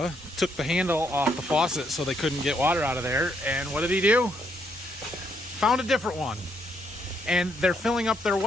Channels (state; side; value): normal; both; correlation 0.73